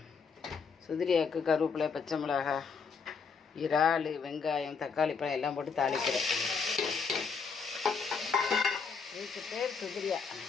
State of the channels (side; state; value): right; quieter; 5.6 dB